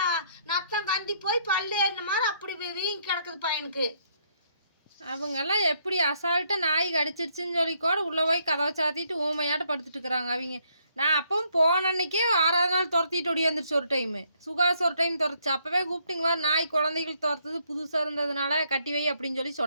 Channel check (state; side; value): inverted; both; correlation -0.71